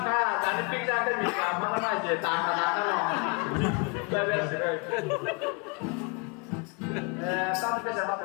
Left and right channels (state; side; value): quieter; right; 32.3 dB